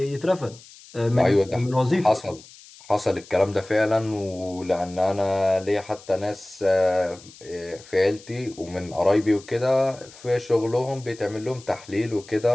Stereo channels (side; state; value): left; noise; hiss, 21 dB below the sound